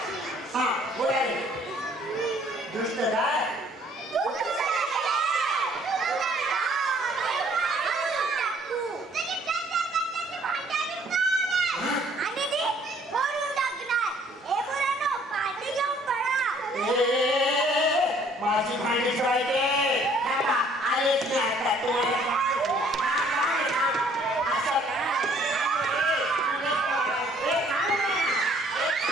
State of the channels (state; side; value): normal; both; correlation 0.60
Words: हा बोलाय दुष्ट काय माझी भांडी ठेवायचे आलेच नाही आता तुम्हाला